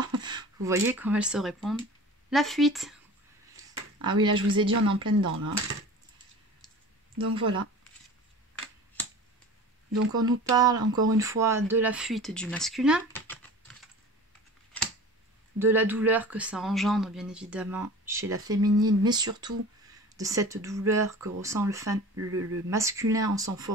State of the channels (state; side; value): normal; both; correlation 0.39